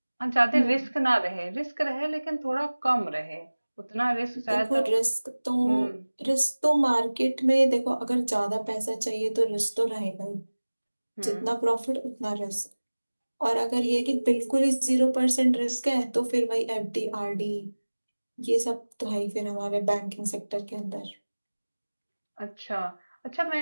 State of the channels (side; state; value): both; inverted; correlation -1.00